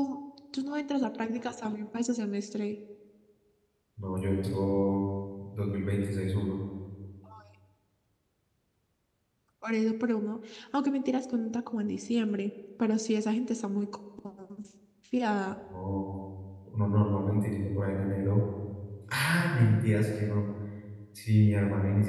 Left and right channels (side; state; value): both; identical; correlation 1.00